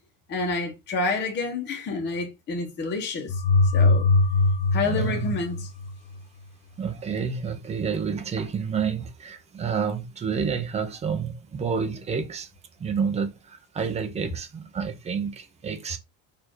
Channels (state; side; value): normal; both; correlation -0.05